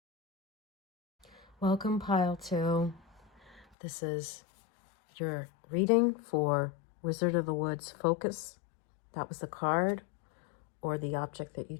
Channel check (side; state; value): right; drops out; at 3.7 s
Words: Welcome, pile 2. This is your reading for Wizard of the Woods Focus. That was the card or the object that you